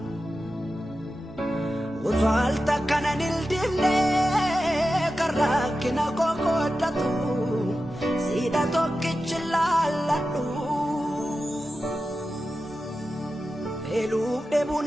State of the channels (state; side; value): normal; both; correlation 0.92